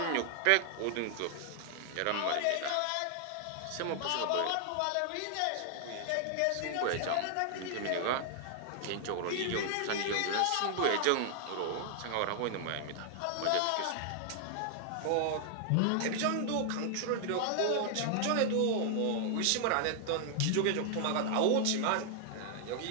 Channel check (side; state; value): both; different; correlation 0.00